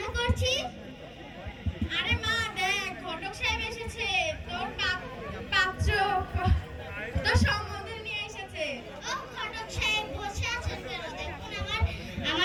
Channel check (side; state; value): both; identical; correlation 1.00